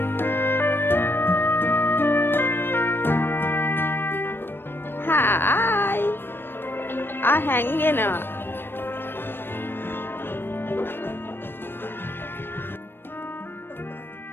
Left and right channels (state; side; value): late; right; 0.10 ms